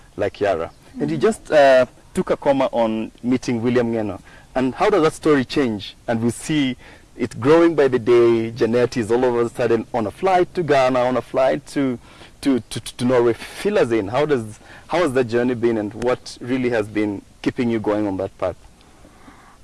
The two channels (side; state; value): both; identical; correlation 1.00